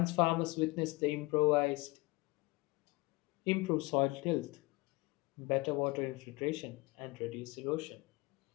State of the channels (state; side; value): quieter; right; 23.9 dB